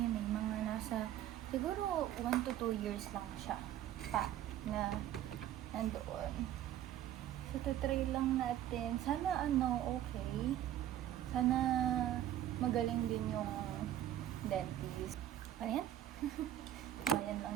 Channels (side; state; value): left; quieter; 11.9 dB